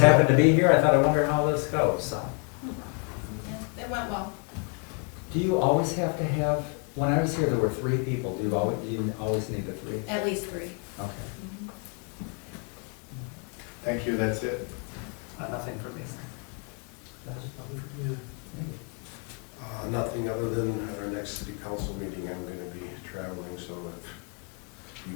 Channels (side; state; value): right; quieter; 36.6 dB